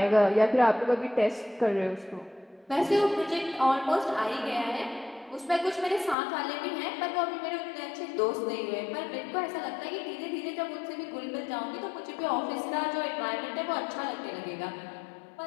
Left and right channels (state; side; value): drops out; right; at 6.2 s